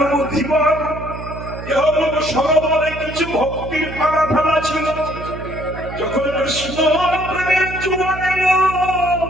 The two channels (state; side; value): noise; right; hum, 11 dB below the sound